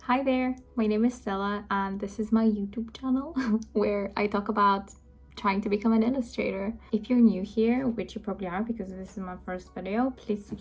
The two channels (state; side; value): identical; both; correlation 1.00